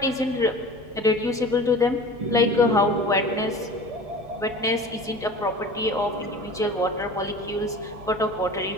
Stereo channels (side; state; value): both; normal; correlation 0.38